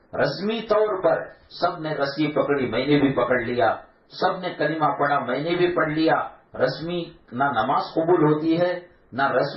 رسمی طور پر سب نے رسی پکڑی، میں نے بھی پکڑ لیا، سب نے کلمہ پڑھا، میں نے بھی پڑھ لیا. رسمی نہ نماز قبول ہوتی ہے، نہ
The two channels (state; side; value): identical; both; correlation 1.00